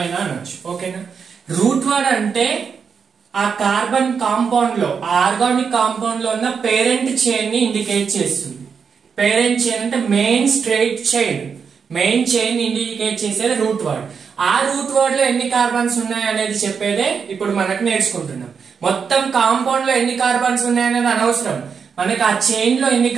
అనొచ్చు. ఓకేనా? రూట్ వర్డ్ అంటే ఆ కార్బన్ కాంపౌండ్ లో, ఆర్గానిక్ కాంపౌండ్ లో ఉన్న పేరెంట్ చైన్ ని ఇండికేట్ చేస్తుంది. పేరెంట్ చైన్ అంటే main straight chain, main chain indicate చేసేది రూట్ వర్డ్. ఆ రూట్ వర్డ్ లో ఎన్ని కార్బన్స్ ఉన్నాయి అనేది చెప్పేదే ఇప్పుడు మనకు నేర్చుకుంటున్నాం. మొత్తం కాంపౌండ్ లో ఎన్ని కార్బన్స్ ఉన్నాయనేది అనవసరం, మనకి ఆ చైన్ లో ఎన్ని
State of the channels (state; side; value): quieter; left; 6.2 dB